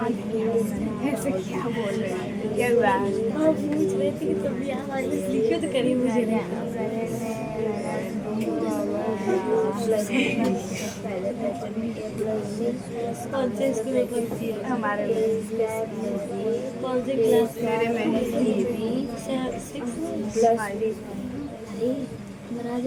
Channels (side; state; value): both; identical; correlation 1.00